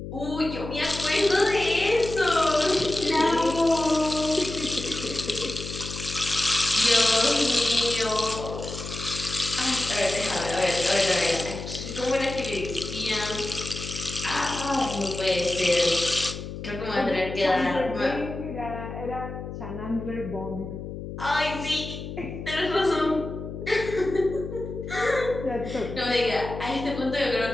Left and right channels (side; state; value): left; noise; hum, 9 dB below the sound